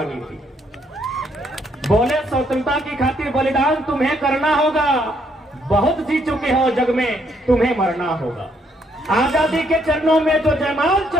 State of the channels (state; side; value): normal; both; correlation 0.71